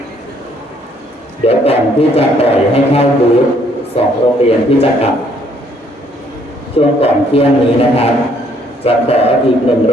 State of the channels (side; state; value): both; normal; correlation 0.65